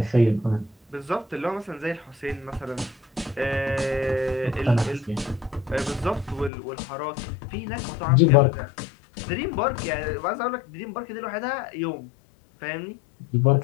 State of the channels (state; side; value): drops out; right; at 6.5 s